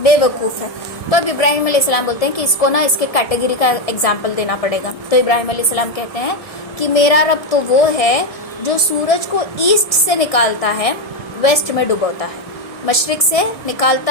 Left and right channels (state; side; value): late; right; 1.7 ms